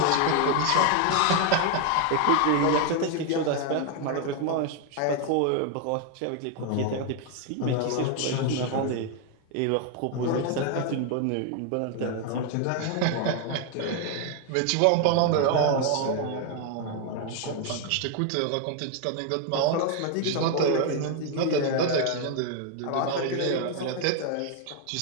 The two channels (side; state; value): both; different; correlation 0.01